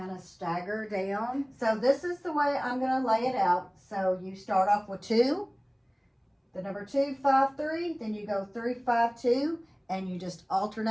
of stagger down. So this is the way I'm going to lay it out. So you start off with 2, the number 2, 5, 3, then you go 3, 5, 2, and you just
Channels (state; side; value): identical; both; correlation 1.00